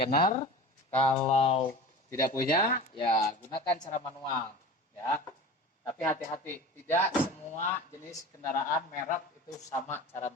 kalau tidak punya ya gunakan cara manual ya. Tapi hati-hati, tidak semua jenis kendaraan merek itu sama cara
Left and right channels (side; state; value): both; normal; correlation 0.35